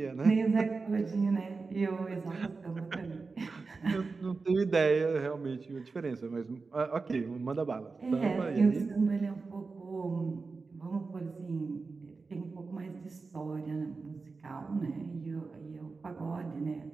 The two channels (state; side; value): quieter; left; 4.2 dB